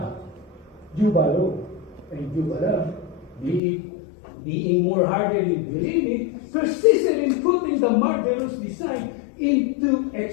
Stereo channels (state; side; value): drops out; right; at 3.6 s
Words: and Jubala, being more hardly believing, persisted in putting putting the murderous design into